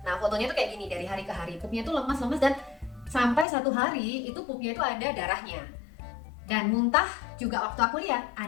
Nah fotonya tuh kayak gini, dari hari ke hari pupnya tuh lemas dan sampai satu hari itu pupnya itu ada darahnya. Dan muntah juga waktu aku lihat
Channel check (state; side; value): drops out; right; at 3.5 s